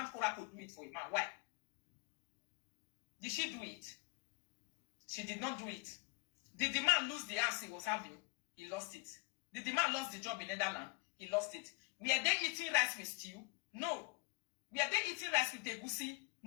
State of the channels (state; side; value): quieter; right; 28.3 dB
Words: Korah to do it for a man. Why? Did she do it? She did not do it. Did the man lose the house he was having? He lost it. Did the man lose the job in Netherlands? He lost it. Were they eating rice with stew? No. Were they eating rice with egusi?